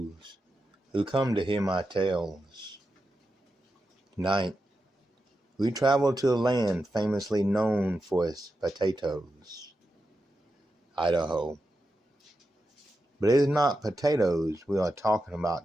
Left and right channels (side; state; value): both; normal; correlation 0.88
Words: who come to hear my tales. Tonight, we travel to a land famously known for its potatoes, Idaho. But it is not potatoes we are talking